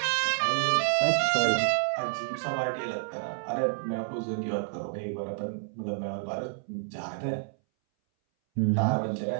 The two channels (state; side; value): silent; left; 59 dB below the other